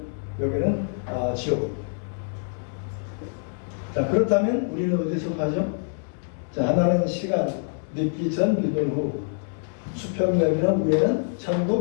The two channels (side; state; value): right; silent; digital silence